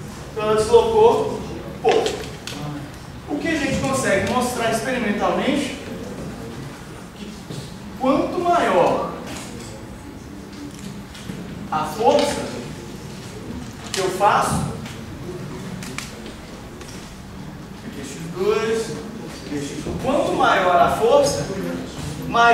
Então ela deslocou pouco. O que a gente consegue mostrar experimentalmente que quanto maior a força que eu faço, aqui x2, aqui x1, quanto maior a força,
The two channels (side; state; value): both; identical; correlation 1.00